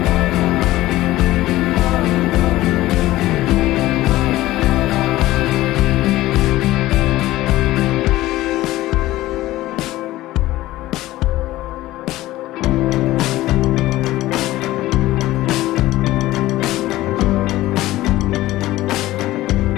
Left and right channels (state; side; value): quieter; right; 16.6 dB